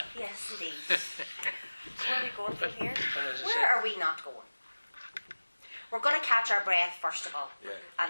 Yes, indeed. Where are we going from here? Where are we not going? We're going to catch our breath first of all. Yeah.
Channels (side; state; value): both; inverted; correlation -1.00